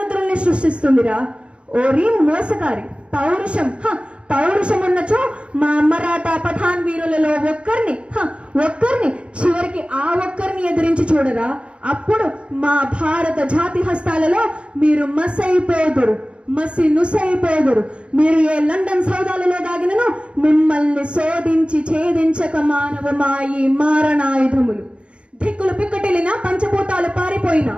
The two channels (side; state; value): left; late; 0.058 ms